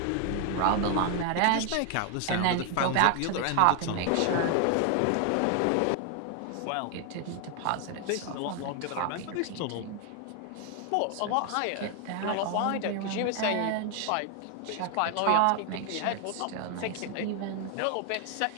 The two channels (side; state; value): both; different; correlation 0.00